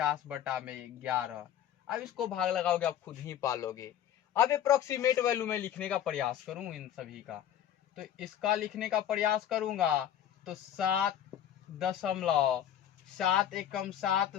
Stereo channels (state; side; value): quieter; right; 10.6 dB